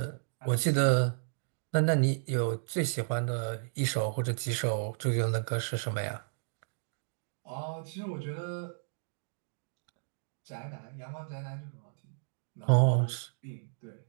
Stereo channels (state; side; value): silent; left; digital silence